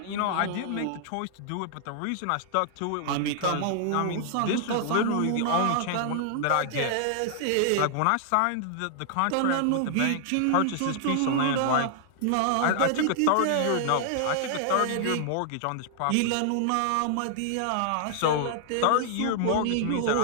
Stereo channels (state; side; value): different; both; correlation -0.01